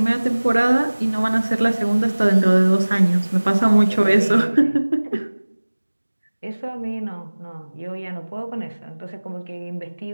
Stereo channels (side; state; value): both; inverted; correlation -1.00